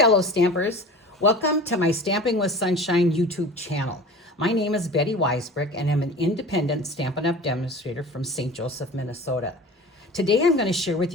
stampers. Welcome to my Stamping with Sunshine YouTube channel. My name is Betty Weisbrick, and I'm an independent Stampin' Up! Demonstrator from St. Joseph, Minnesota. Today, I'm going to share with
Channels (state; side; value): normal; both; correlation 0.38